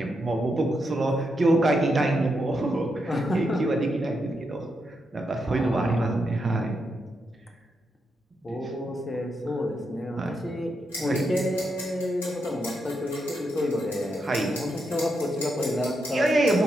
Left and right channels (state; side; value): normal; both; correlation 0.83